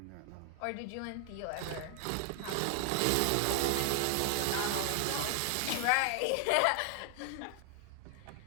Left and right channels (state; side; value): different; both; correlation 0.00